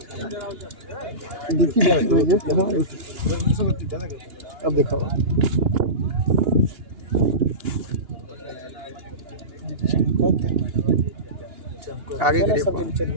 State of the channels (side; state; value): left; late; 2.9 ms